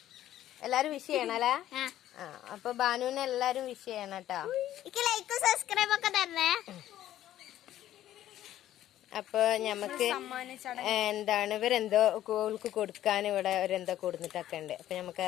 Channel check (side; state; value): right; quieter; 12.8 dB